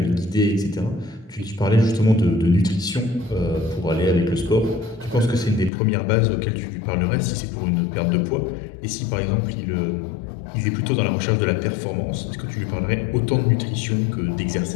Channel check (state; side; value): drops out; right; at 5.7 s